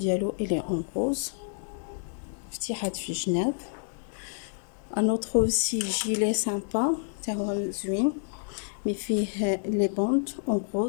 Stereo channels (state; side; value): silent; right; digital silence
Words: elle est en rose, فتيحات في الجناب. un autre aussi gilet sympa تاع هو زوين مي فيه les bandes en